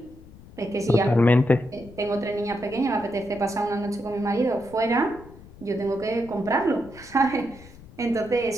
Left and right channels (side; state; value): left; noise; rumble, 20 dB below the sound